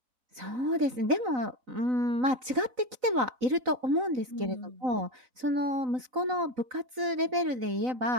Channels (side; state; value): left; late; 4.0 ms